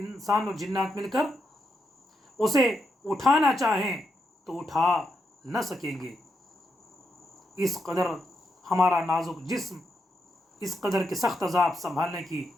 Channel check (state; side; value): normal; both; correlation 0.82